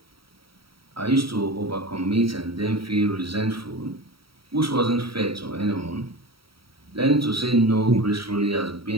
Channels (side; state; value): left; late; 0.75 ms